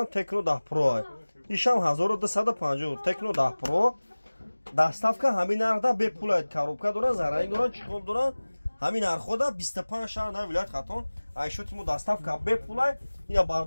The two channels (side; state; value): both; inverted; correlation -1.00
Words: Tecno 10 Pro ишам 1250 Tecno 10 Pro доставка ҳамин нархда бепул коробка дора зарани дора чиқол дора ҳамин нархода 25 шаҳр на вилоят хатон айшотимо доставка бепул ина